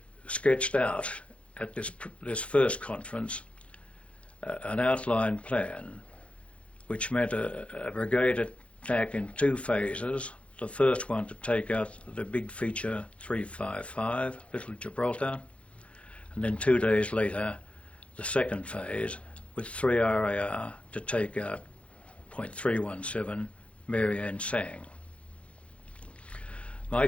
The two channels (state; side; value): late; right; 0.062 ms